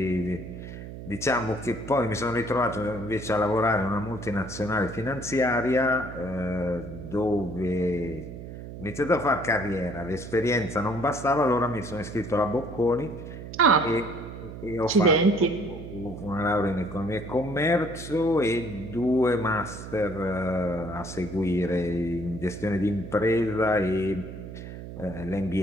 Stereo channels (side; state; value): right; noise; hum, 11 dB below the sound